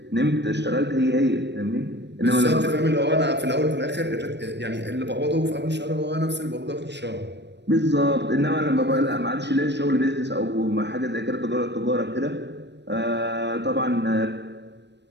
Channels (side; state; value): left; late; 0.50 ms